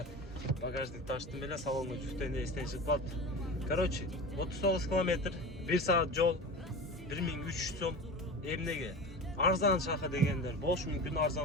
багажник таштым эле, салонго жүктөйүндө эстен чыгып калды. Короче, 39 километр, 1 саат жол, 1300 сом. Эмнеге? Арзан шаха дегендер болушу мүмкүн,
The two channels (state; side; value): normal; both; correlation 0.30